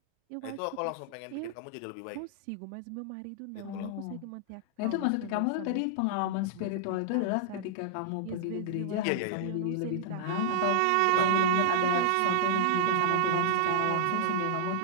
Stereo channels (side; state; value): both; different; correlation -0.01